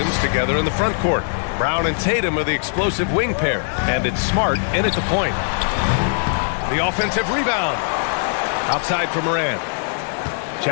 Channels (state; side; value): silent; right; 65 dB below the other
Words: together in the front court. Brown and Tatum are the explosive wing pair. And it's Smart in at the point. The offensive rebound. Outside for Morant.